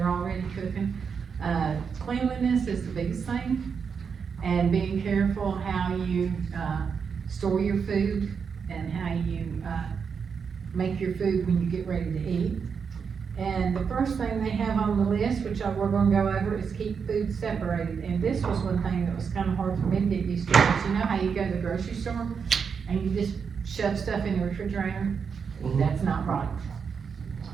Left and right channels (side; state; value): left; quieter; 6.2 dB